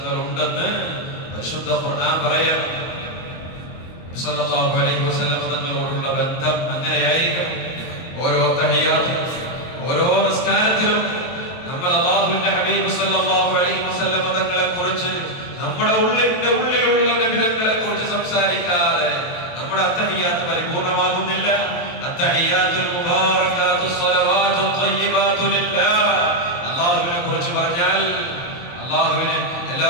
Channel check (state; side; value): late; right; 23 ms